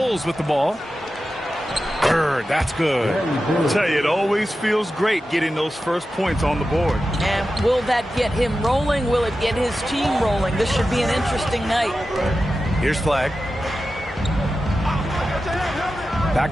with the ball. Bird, that's good. I'll tell you, it always feels great getting those first points on the board. And will that get him rolling? Will it get his team rolling? This should be an interesting night. Here's Flag.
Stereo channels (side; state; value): both; normal; correlation 0.92